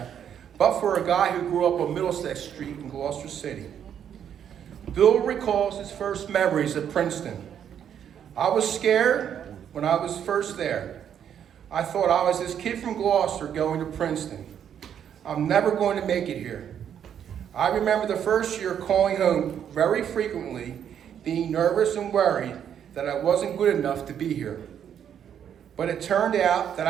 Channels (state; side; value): quieter; left; 9.0 dB